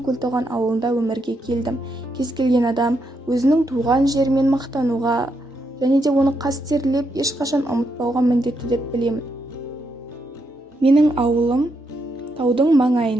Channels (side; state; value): both; normal; correlation 0.80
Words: Көлтоған ауылында өмірге келдім. Кез келген адам өзінің туған жерімен мақтануға және де оны қастерлеп, ешқашан ұмытпауға міндетті деп білемін. Менің ауылым таудың